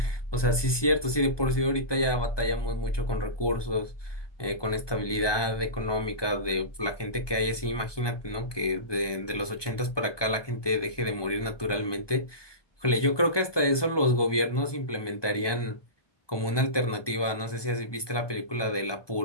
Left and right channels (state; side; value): late; right; 1.2 ms